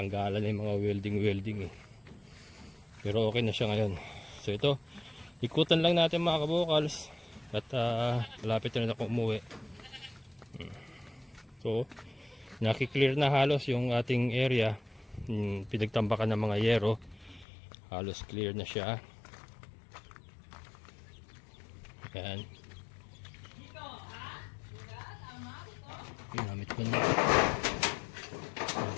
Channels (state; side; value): drops out; right; at 17.4 s